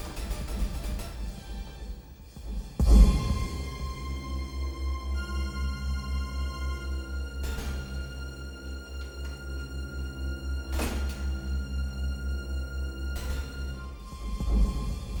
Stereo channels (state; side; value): identical; both; correlation 1.00